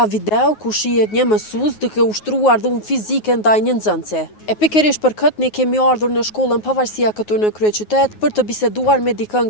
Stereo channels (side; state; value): right; late; 9.4 ms